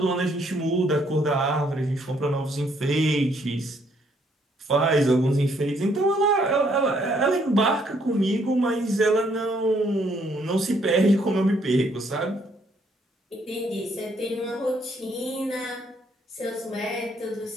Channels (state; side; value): normal; both; correlation 0.68